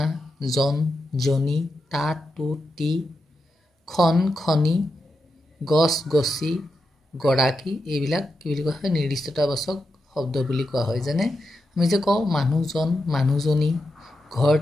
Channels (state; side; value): normal; both; correlation 0.87